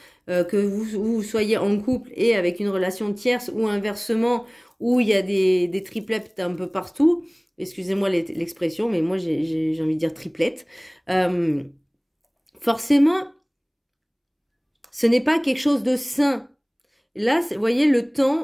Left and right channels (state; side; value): identical; both; correlation 1.00